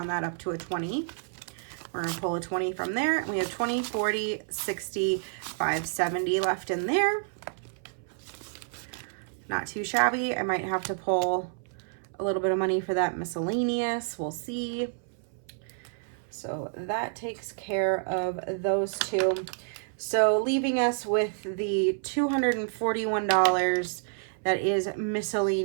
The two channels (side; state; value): left; silent; 58 dB below the other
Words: that up to a 20. We're going to pull a 20 from there. We have 20, 40, 60, 570 left in there. Not too shabby. I might have to pull a little bit of money for that miscellaneous. We'll see. So that takes care of those two. So leaving us with the $241 that is